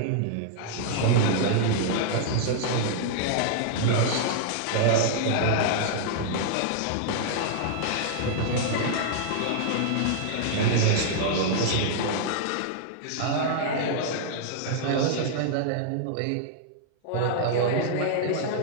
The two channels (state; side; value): different; both; correlation -0.01